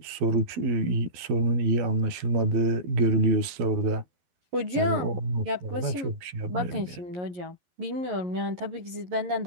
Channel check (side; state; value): left; late; 11 ms